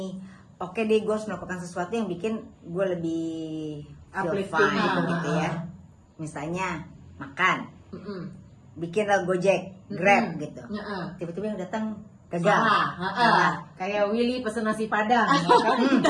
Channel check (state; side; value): identical; both; correlation 1.00